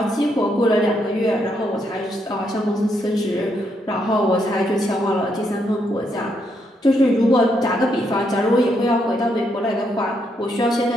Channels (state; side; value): normal; both; correlation 0.77